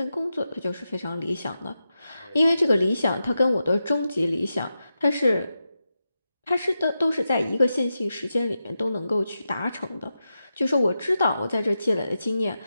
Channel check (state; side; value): inverted; both; correlation -0.89